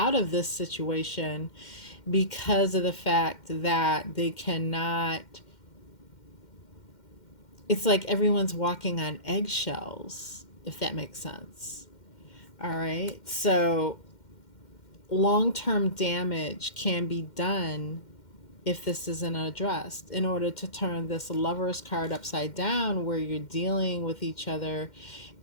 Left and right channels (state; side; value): late; right; 2.1 ms